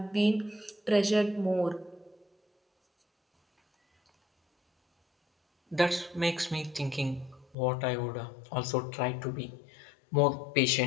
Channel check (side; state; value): right; drops out; at 7.6 s